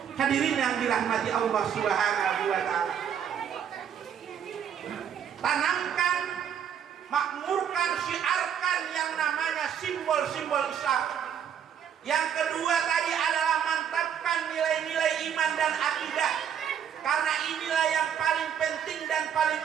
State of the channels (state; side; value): quieter; left; 8.5 dB